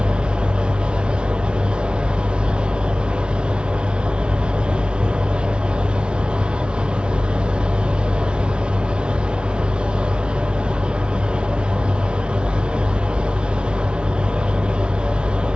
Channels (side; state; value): left; late; 0.055 ms